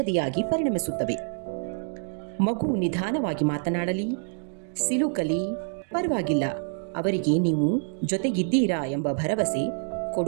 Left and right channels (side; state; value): left; silent; 60 dB below the other